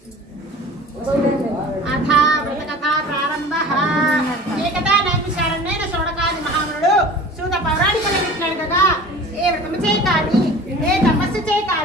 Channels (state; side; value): normal; both; correlation 0.41